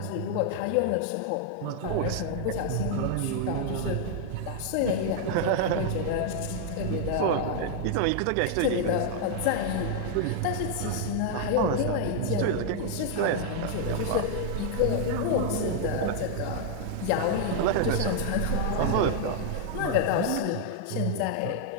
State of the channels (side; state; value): both; different; correlation 0.00